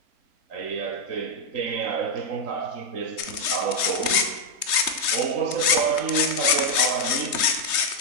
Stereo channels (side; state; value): left; late; 3.3 ms